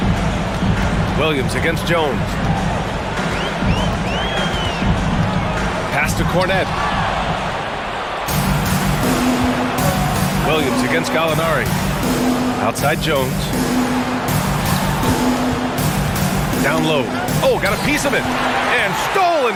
Williams against Jones. Pass to Cornette. Williams against Gallinari. Outside Jones. Down low. Oh, got a piece of it. And stolen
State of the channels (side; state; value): both; identical; correlation 1.00